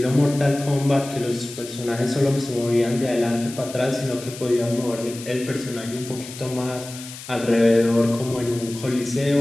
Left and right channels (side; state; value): left; noise; hiss, 14 dB below the sound